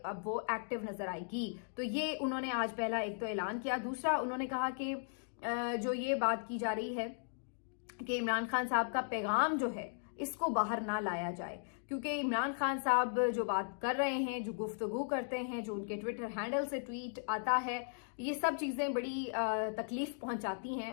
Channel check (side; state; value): right; silent; digital silence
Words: वो एक्टिव नजर आएगी। तो ये उन्होंने आज पहला एक तो ऐलान किया। दूसरा, उन्होंने कहा कि जो ये बात की जा रही है कि इमरान खान साहब का पैगाम जो है इसको बाहर ना लाया जाए, क्योंकि इमरान खान साहब जो बात कर रहे हैं, जो गुफ्तगू करते हैं, जो उनके ट्विटर हैंडल से ट्वीट आता है, ये सब चीजें बड़ी तकलीफ पहुंचाती हैं।